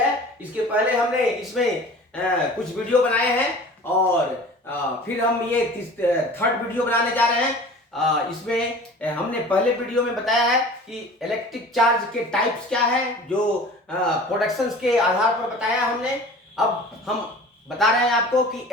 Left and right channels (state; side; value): normal; both; correlation 0.42